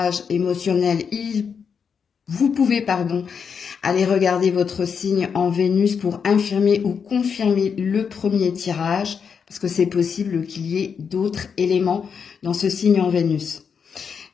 émotionnel, vous pouvez aller regarder votre signe en Vénus pour infirmer ou confirmer le premier tirage, parce que c'est possible qu'il y ait d'autres éléments dans ce signe en Vénus.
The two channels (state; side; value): quieter; right; 6.5 dB